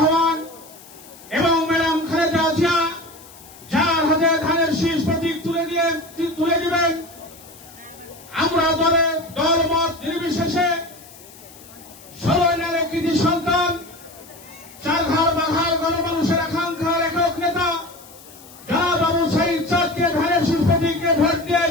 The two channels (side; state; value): left; noise; hiss, 21 dB below the sound